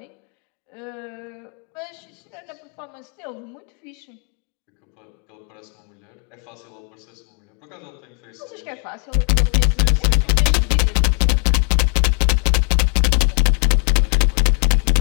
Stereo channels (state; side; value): quieter; right; 40.0 dB